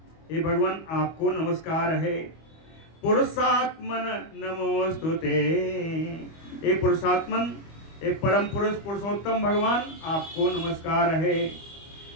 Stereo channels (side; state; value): right; late; 25 ms